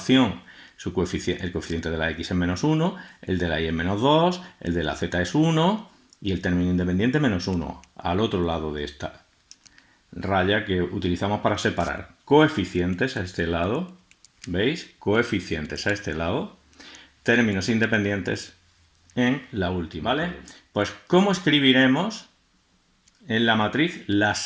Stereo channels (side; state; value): both; identical; correlation 1.00